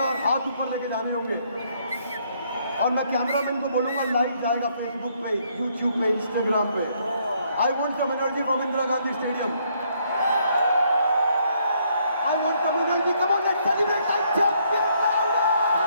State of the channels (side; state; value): both; inverted; correlation -0.70